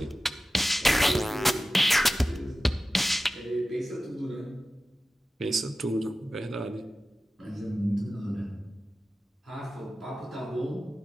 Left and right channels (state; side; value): normal; both; correlation 0.95